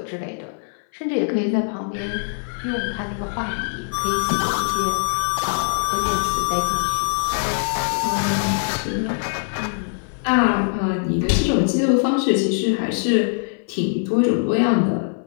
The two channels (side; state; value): right; silent; 60 dB below the other